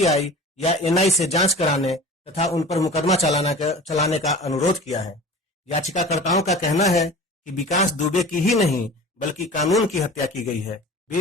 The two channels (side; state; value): both; normal; correlation 0.39